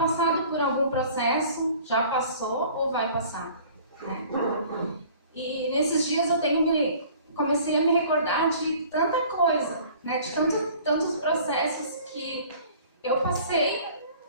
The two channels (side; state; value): both; inverted; correlation -0.50